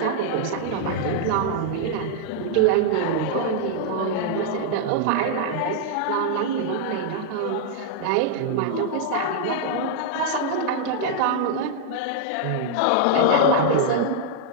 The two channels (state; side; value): different; both; correlation -0.01